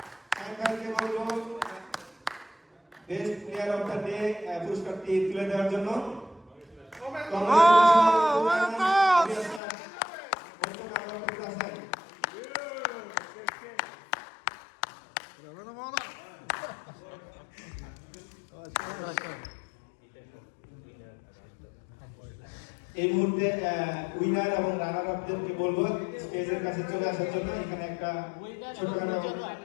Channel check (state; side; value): drops out; right; at 9.6 s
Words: Shahin ভাইকে বলবো best player of the day পুরস্কারটি তুলে দেওয়ার জন্য। এই মুহূর্তে উইনার এবং রানার আপদেরকে বলবো স্টেজের কাছে চলে আসার জন্য। এখানে একটা ছোটখাটো